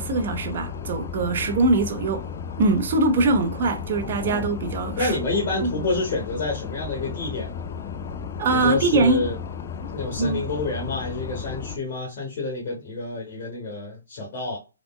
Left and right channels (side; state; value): both; inverted; correlation -0.32